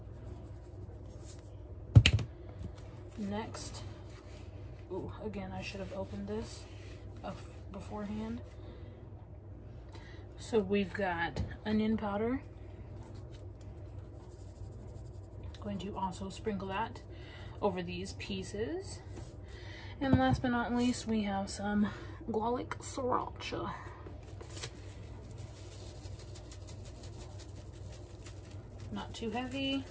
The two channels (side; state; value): both; identical; correlation 1.00